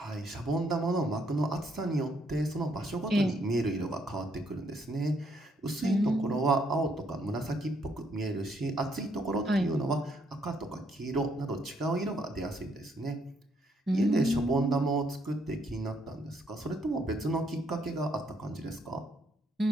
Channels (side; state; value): both; normal; correlation 0.71